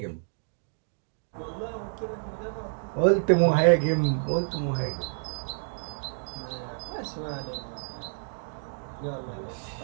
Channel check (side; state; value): left; silent; digital silence